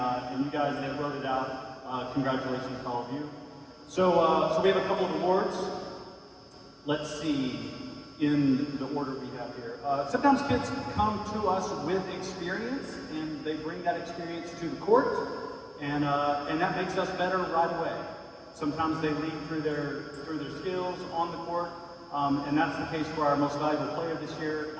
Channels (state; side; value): identical; both; correlation 1.00